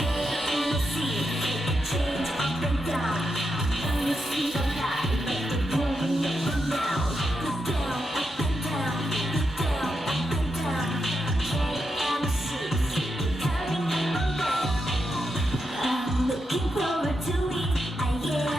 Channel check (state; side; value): normal; both; correlation 0.85